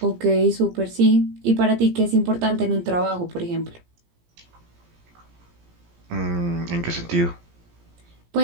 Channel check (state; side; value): late; left; 17 ms